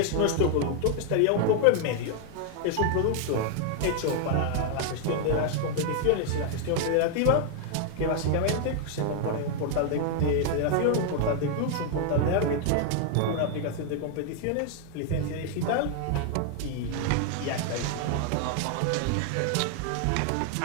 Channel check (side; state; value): both; different; correlation 0.00